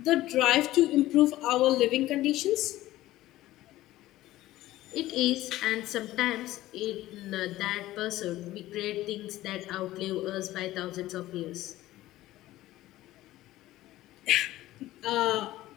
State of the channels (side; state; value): right; quieter; 15.9 dB